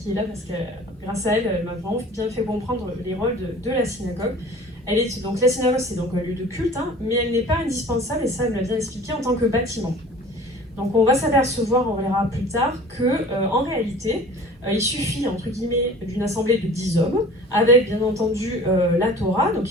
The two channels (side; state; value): both; normal; correlation 0.44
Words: est là parce que grâce à elle, elle m'a vraiment bien fait comprendre les rôles de la synagogue. Donc la synagogue, c'est donc un lieu de culte, mais elle n'est pas indispensable, et ça elle me l'a bien expliqué, en tant que bâtiment. Donc on va s'apercevoir, on verra plus tard, qu'en réalité, il suffit entre guillemets d'une assemblée de 10 hommes, avec bien entendu la Torah, donc